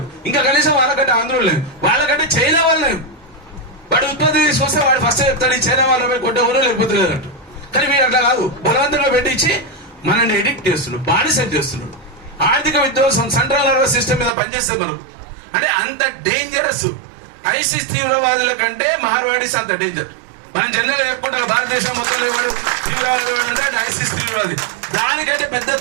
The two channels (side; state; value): left; drops out; at 14.3 s